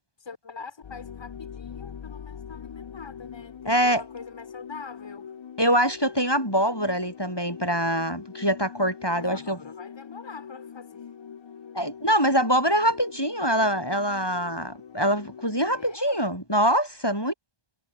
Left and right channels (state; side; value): late; right; 1.2 ms